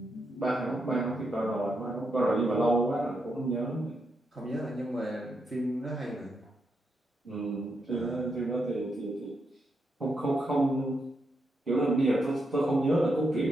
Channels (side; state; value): both; normal; correlation 0.82